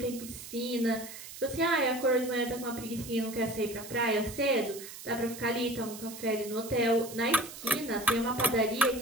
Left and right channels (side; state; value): right; noise; hiss, 13 dB below the sound